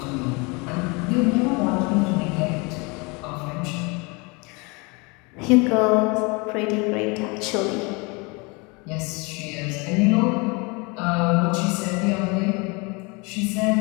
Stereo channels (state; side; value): quieter; right; 28.7 dB